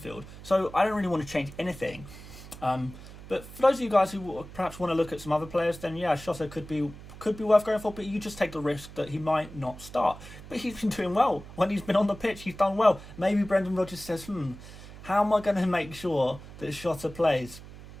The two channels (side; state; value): right; noise; hum, 16 dB below the sound